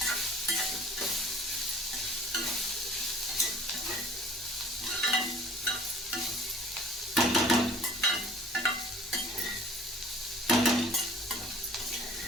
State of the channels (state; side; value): normal; both; correlation 0.49